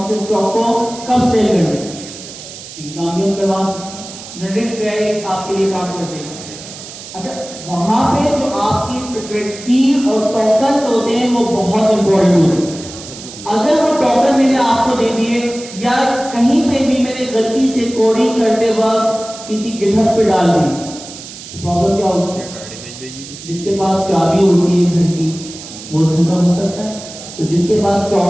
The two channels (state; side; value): noise; right; hiss, 14 dB below the sound